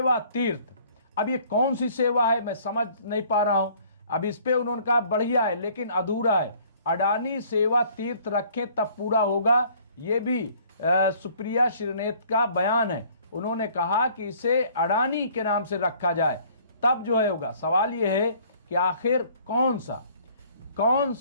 तीर्थ। अब ये कौन सी सेवा है मैं समझ नहीं पा रहा हूं। अब इस पे उन्होंने कहा बढ़िया है लेकिन अधूरा है। अडानी सेवा तीर्थ रखें तब पूरा होगा, ये भी सुप्रिया श्रीनेत का बयान है। उन्होंने कहा कि इसे अडानी के नाम से रखा जाए तब जो है होगा। सवाल ये है कि आखिर कौन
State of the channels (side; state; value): both; inverted; correlation -0.56